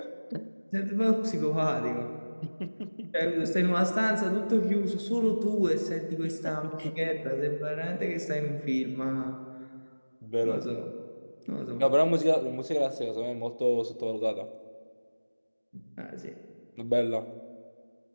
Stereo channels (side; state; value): both; inverted; correlation -1.00